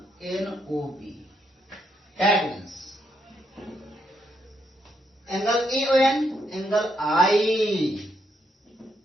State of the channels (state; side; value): normal; both; correlation 0.77